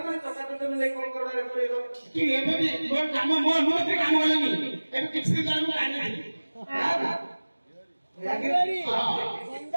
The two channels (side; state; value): both; inverted; correlation -1.00